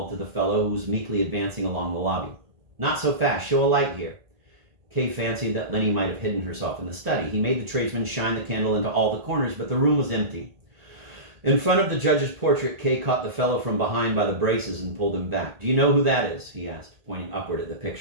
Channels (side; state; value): left; late; 1.8 ms